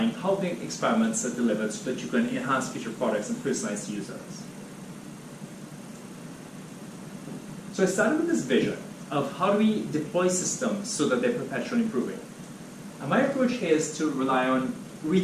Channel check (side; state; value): both; identical; correlation 1.00